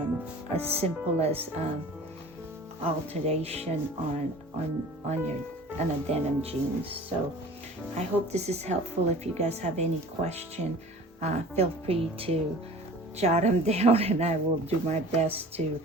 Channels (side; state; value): both; normal; correlation 0.43